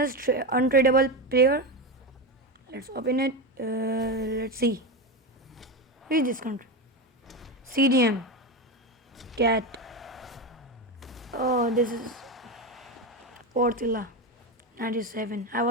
untradeable player. Let's open it. Let's see. Who is this country? CDM. Cat. Oh, this is Portilla 97. I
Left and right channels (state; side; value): normal; both; correlation 0.16